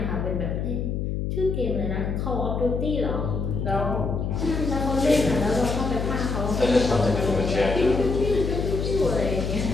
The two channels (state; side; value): noise; left; hum, 1 dB below the sound